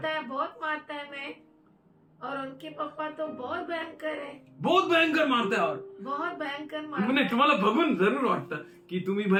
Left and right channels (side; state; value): both; identical; correlation 1.00